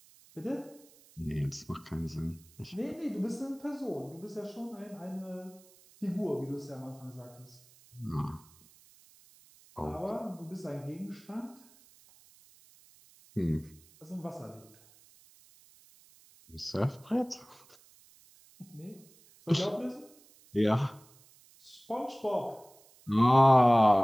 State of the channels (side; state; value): right; noise; hiss, 26 dB below the sound